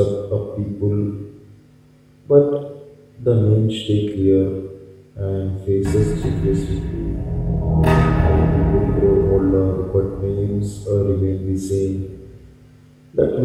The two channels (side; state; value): both; identical; correlation 1.00